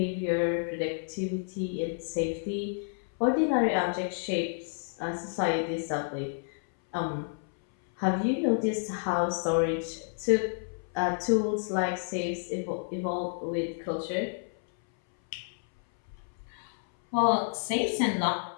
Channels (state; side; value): silent; right; 58 dB below the other